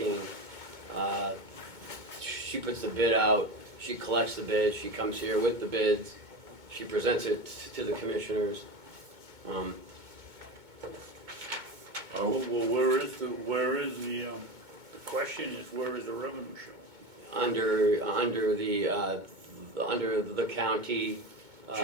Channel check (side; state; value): left; late; 2.2 ms